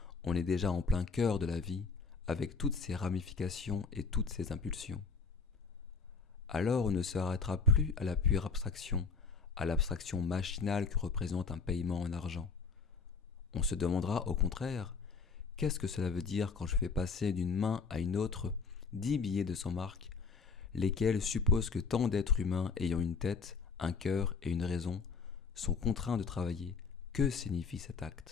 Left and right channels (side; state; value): right; quieter; 5.0 dB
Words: on est déjà en plein cœur de la vie, avec toutes ses ramifications et toutes ses impulsions. Alors on ne s'arrêtera plus à la pure abstraction, à l'abstraction machinale que représente un paiement en argent. On se demandera au contraire, qu'est-ce que cela veut dire quand je fais passer d'une main à une autre 10 billets de 100 marks, lesquels supposent que tant d'êtres humains ayant une tête, un cœur et une raison sont contraints de travailler. Que signifie cet